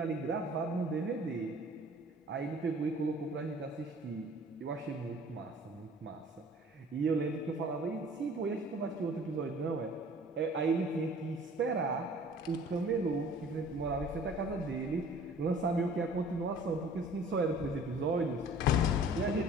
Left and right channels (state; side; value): normal; both; correlation 0.49